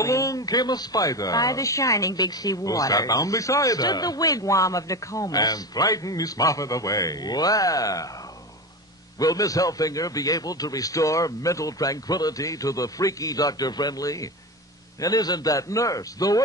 came a spider. By the shining big sea who waters. sat down beside Stood her. the wigwam of Nokomis. And frightened Miss Muffet away. Wow. Will Miss Helfinger be able to restore mental tranquility to the freaky Dr. Friendly? And isn't that nurse the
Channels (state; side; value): normal; both; correlation 0.24